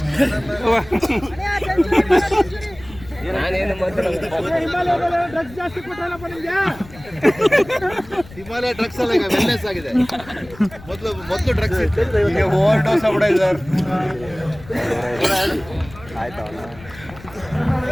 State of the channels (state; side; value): noise; left; rumble, 19 dB below the sound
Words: ಡ್ರಗ್ಸ್ ಜಾಸ್ತಿ ಕೊಟ್ಟಲ್ಲಪ್ಪ ನಿಮ್ಗೆ. ಹಿಮಾಲಯ ಡ್ರಗ್ಸ್ ಅಲ್ಲ, ಈಗ ವೆಲ್ನೆಸ್ ಆಗಿದೆ. ಮೊದಲು ಡ್ರಗ್ಸ್ ಇತ್ತು, ಈಗ ಓವರ್ ಡೋಸ್ ಆಗ್ಬಿಟ್ಟಿದೆ ಸರ್. ಆಯ್ತಾ